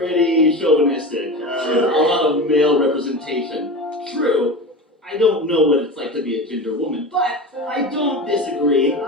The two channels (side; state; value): both; normal; correlation 0.28